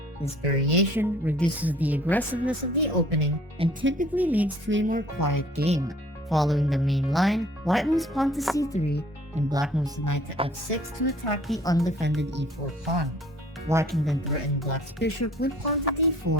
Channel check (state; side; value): normal; both; correlation 0.54